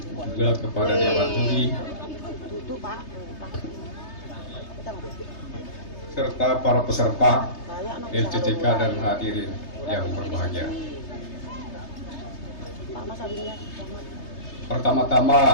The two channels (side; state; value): right; late; 3.3 ms